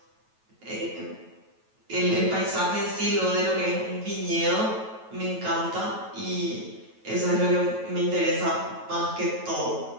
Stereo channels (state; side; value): late; left; 9.2 ms